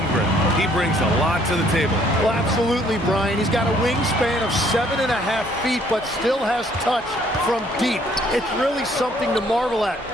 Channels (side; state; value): both; normal; correlation 0.63